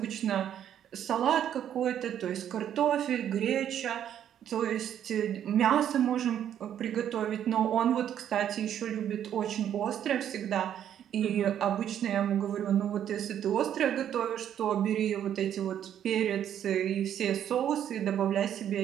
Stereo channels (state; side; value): quieter; left; 10.0 dB